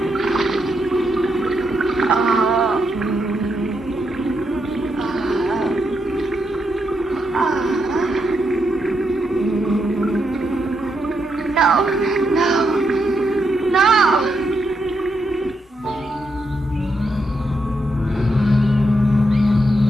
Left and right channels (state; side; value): normal; both; correlation 0.81